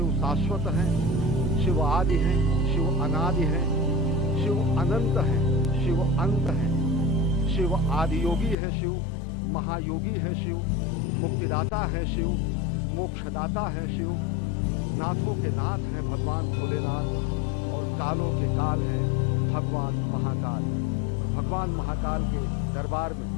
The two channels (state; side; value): drops out; right; at 8.6 s